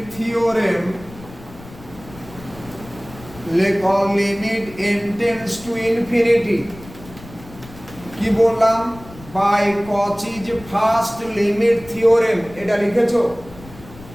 থিওরেম লেখো limit n tends to infinity. কি বললাম? বাই কচিজ ফার্স্ট লিমিট থিওরেম, এটা লিখেছো?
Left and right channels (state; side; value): noise; left; rumble, 18 dB below the sound